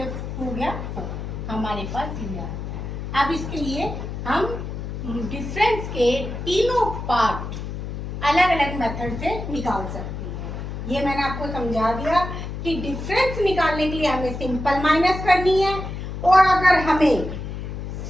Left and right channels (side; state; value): left; noise; hum, 6 dB below the sound